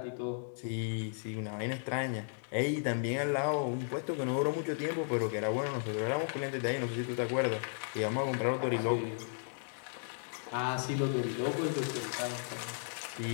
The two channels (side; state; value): right; silent; digital silence